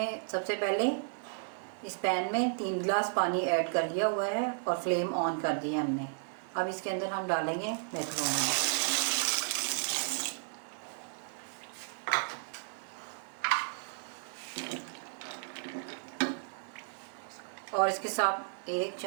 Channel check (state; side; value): silent; left; digital silence